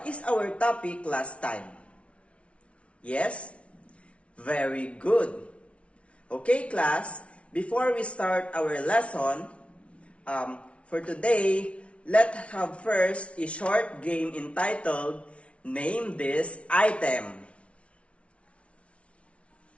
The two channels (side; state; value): right; late; 0.062 ms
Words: is our topic last time? Yes? Very good. Okay, class, before we start our lesson, for today, let's have first a short game entitled Name This Item.